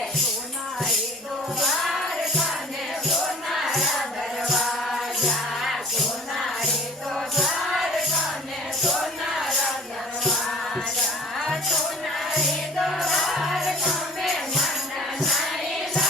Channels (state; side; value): normal; both; correlation 0.47